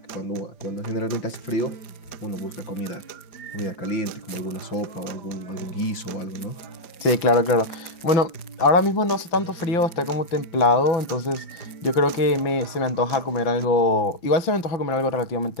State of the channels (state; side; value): late; right; 5.4 ms